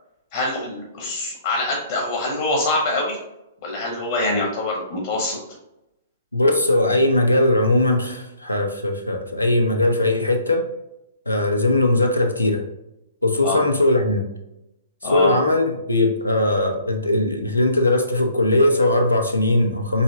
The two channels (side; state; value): both; inverted; correlation -0.63